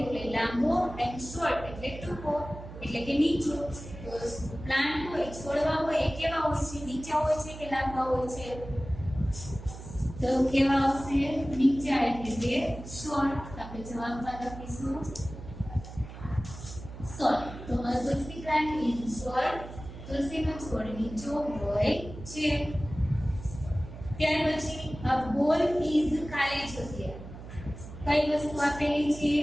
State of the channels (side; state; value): right; noise; hum, 13 dB below the sound